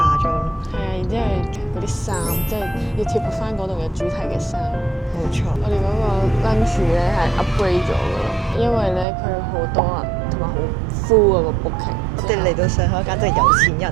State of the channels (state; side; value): drops out; left; at 9.1 s